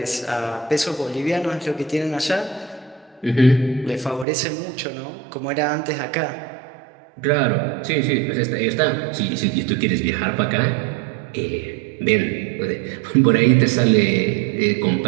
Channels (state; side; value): drops out; left; at 4.2 s